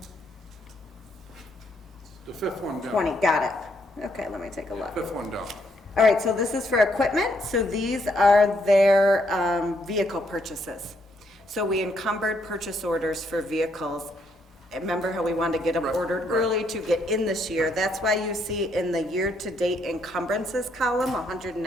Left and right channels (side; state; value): both; normal; correlation 0.73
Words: the fifth one down. 20, got it. Okay, let me take a look. Fifth one down. All right, so this is for equipment. So these are their vehicle purchases. So we encumbered purchase orders for vehicles. Remember how we wanted to get them ordered early to get in this year? That's why you see in the year-to-date encumbrances column,